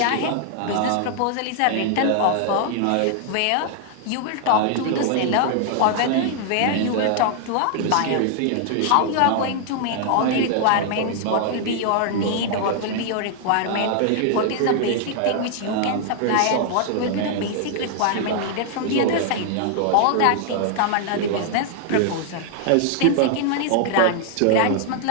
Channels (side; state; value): both; different; correlation 0.00